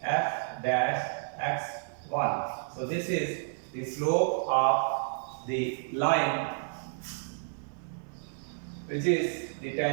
f dash x1. So this is the slope of the line which is the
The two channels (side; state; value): left; silent; digital silence